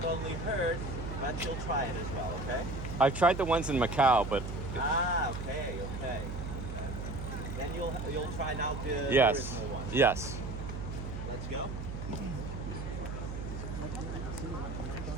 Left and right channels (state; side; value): noise; right; hum, 6 dB below the sound